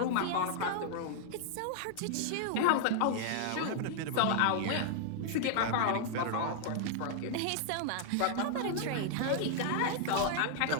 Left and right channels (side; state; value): both; different; correlation -0.01